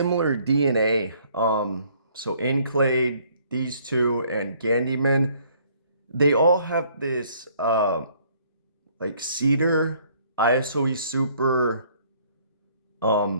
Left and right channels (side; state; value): both; inverted; correlation -0.62